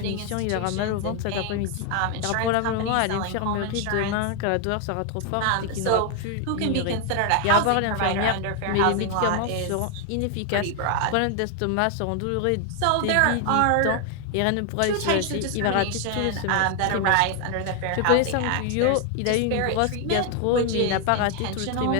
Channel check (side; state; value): both; different; correlation 0.01